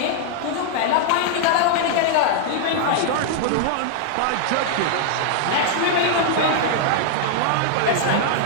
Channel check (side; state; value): both; different; correlation -0.01